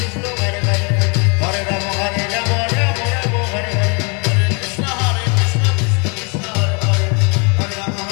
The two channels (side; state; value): right; quieter; 33.5 dB